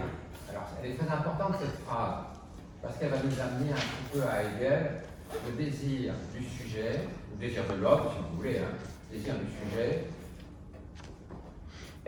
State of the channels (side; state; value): both; identical; correlation 1.00